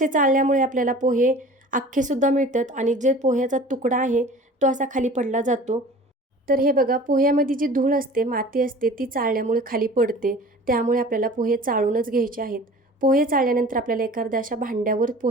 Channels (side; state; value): both; normal; correlation 0.43